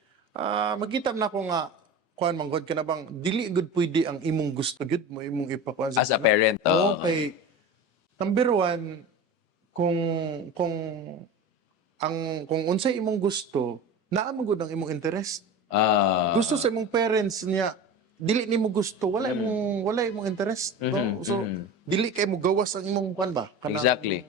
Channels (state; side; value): normal; both; correlation 0.31